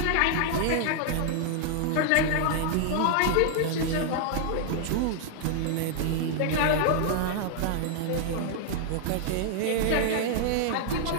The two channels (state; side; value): different; both; correlation 0.00